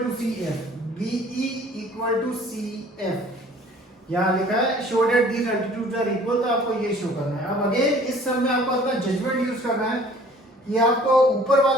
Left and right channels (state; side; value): normal; both; correlation 0.52